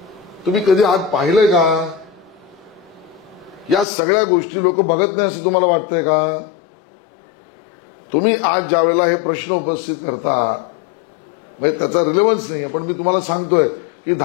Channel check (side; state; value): right; drops out; at 3.9 s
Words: तुम्ही कधी आज पाहिलंय का? या सगळ्या गोष्टी लोक बघत नाही असं तुम्हाला वाटतंय का? तुम्ही आज ज्या वेळेला हे प्रश्न उपस्थित करता म्हणजे त्याचा रिलेव्हन्स नाही, पण मी तुम्हाला सांगतोय की